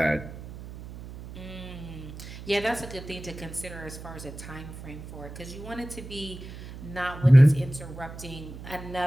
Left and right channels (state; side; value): noise; right; hum, 13 dB below the sound